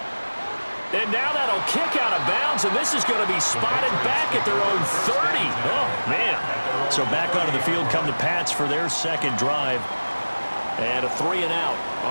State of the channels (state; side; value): inverted; both; correlation -1.00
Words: And now that'll kick out of bounds, and this is going to be spotted back at their own 30. Oh, man. So back onto the field come the Pats for their second drive. And a 3-and-out